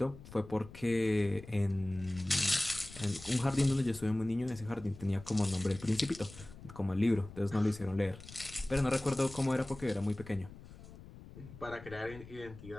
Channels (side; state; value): left; noise; rumble, 16 dB below the sound